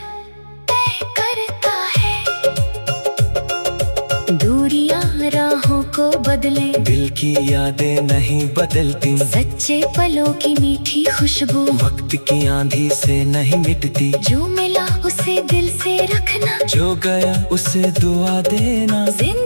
तय करता है। दूरियां राहों को बदले, दिल की यादें नहीं बदलती। सच्चे पलों की मीठी खुशबू वक्त की आंधी से नहीं मिटती। जो मिला उसे दिल से रखना, जो गया उसे दुआ देना।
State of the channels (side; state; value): both; inverted; correlation -1.00